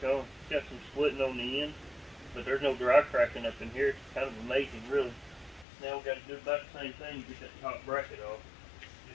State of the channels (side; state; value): right; drops out; at 5.7 s